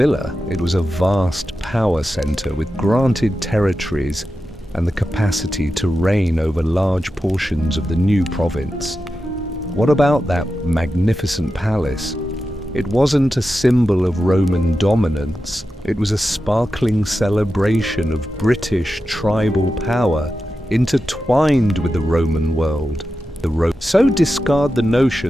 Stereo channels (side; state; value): both; normal; correlation 0.91